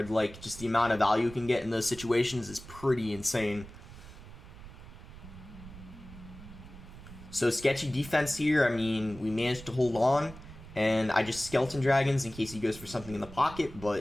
Like, just the amount of value you can get in those situations is pretty insane. So, sketchy defense here. I mean, we managed to hold on. And I just Skeleton Dragons in case he goes for something in the pocket.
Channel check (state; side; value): noise; right; rumble, 16 dB below the sound